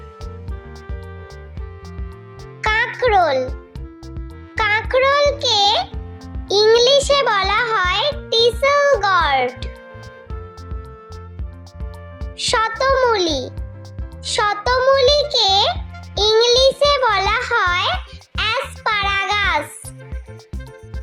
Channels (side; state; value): both; identical; correlation 1.00